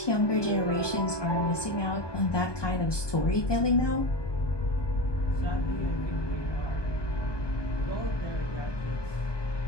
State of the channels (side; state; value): right; late; 1.2 ms